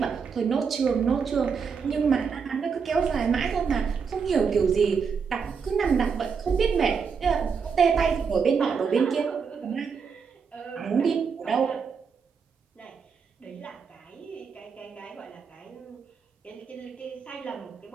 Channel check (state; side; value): quieter; left; 5.9 dB